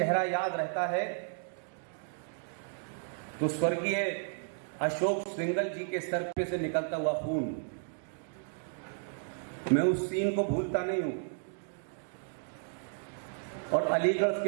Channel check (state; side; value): silent; left; digital silence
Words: याद रहता है तो स्वर्गीय अशोक सिंघल जी के सर पे से निकलता हुआ खून, मैं उस सीन को भूलता नहीं हूं। और अलीगढ़